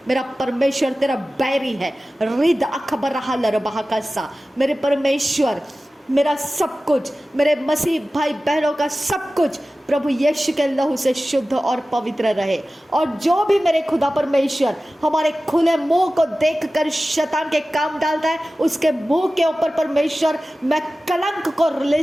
मेरा परमेश्वर तेरा बैरी है। रिद अखबर हलर बहाकसा, मेरे परमेश्वर, मेरा सब कुछ, मेरे मसीह भाई बहनों का सब कुछ प्रभु यीशु के लहू से शुद्ध और पवित्र रहे। और जो भी मेरे खुदा परमेश्वर हमारे खुले मुंह को देखकर शैतान के काम डालता है, उसके मुंह के ऊपर परमेश्वर मैं कलंक को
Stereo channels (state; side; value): normal; both; correlation 0.96